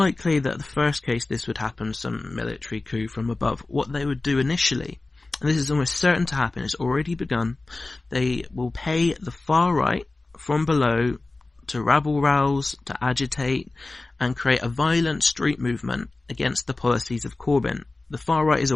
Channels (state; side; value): quieter; right; 3.2 dB